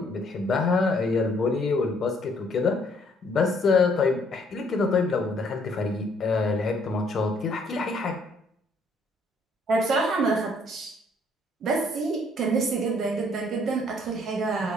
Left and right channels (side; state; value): both; normal; correlation 0.65